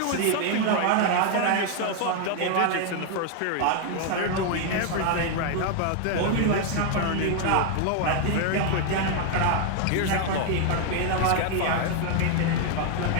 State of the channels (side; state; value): both; different; correlation 0.00